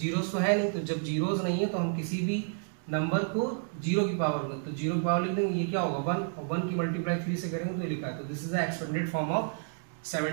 तो है नहीं, तो जब जीरोस नहीं है तो हम किसी भी नंबर को 0 की पावर में, तो 0 की पावर लिख देंगे। ये क्या होगा? 1, और 1 की मल्टीप्लाई 3 से करेंगे तो ये लिखा है। तो this is the expanded form of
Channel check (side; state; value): left; silent; digital silence